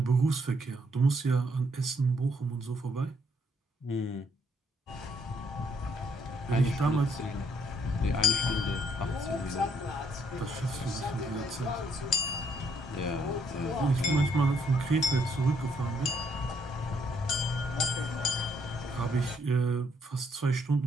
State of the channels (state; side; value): normal; both; correlation 0.71